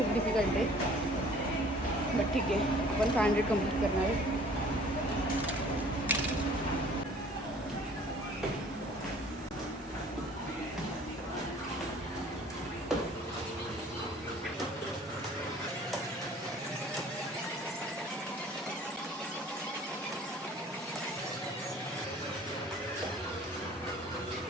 डिफिकल्ट आहे, बट ठीक आहे, आपण 500 कंप्लीट करणार आहे.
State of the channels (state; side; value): normal; both; correlation 0.52